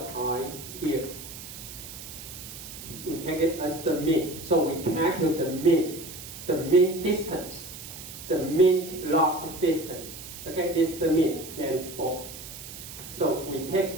I here. We take it as the mean. So we calculate the mean distance, the mean log distance. Okay, this is the mean, then 4. So we take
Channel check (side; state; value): right; noise; hiss, 12 dB below the sound